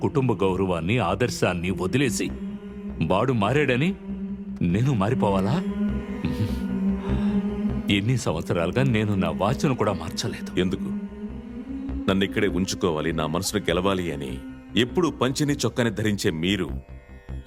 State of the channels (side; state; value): both; identical; correlation 1.00